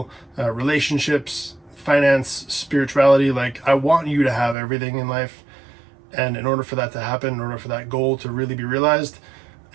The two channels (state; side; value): drops out; left; at 4.5 s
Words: relationships, finance, spirituality. Like, I want you to have everything in life. And in order for that to happen, in order for that goal to really be realized,